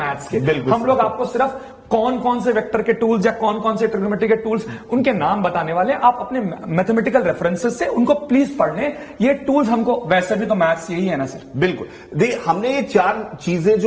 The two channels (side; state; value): both; identical; correlation 1.00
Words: के। हम लोग आपको सिर्फ कौन कौन से वेक्टर के टूल्स या कौन कौन से ट्रिग्नोमेट्री के टूल्स, उनके नाम बताने वाले। आप अपने मैथमेटिकल रेफरेंसेस से उनको प्लीज पढ़ लें। ये टूल्स हमको, वैसे भी तो मैथ्स यही है ना सर। बिल्कुल। हमने ये 4 चीजें